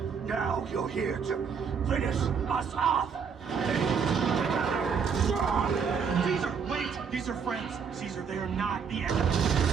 Now you're here to finish us off. Caesar, wait! These are friends. Caesar, they are not the enemy.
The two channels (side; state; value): left; quieter; 6.4 dB